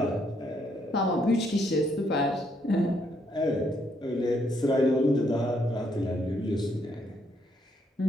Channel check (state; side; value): normal; both; correlation 0.73